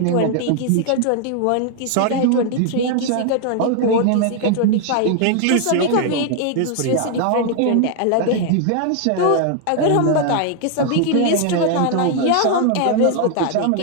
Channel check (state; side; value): different; both; correlation 0.00